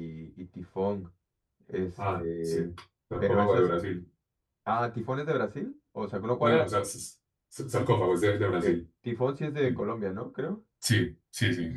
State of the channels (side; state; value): both; identical; correlation 1.00